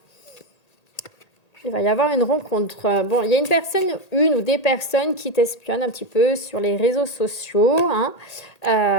Il va y avoir une rencontre. Bon, il y a une ou des personnes qui t'espionnent un petit peu sur les réseaux sociaux,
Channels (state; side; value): late; right; 1.8 ms